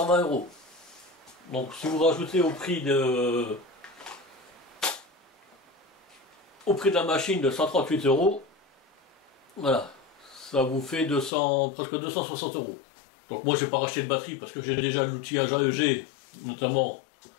€. Donc si vous rajoutez au prix de la machine de 138 €, voilà, ça vous fait presque 260 €. Donc moi je n'ai pas racheté de batterie parce que j'ai déjà l'outillage AEG, notamment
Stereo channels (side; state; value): right; drops out; at 11.3 s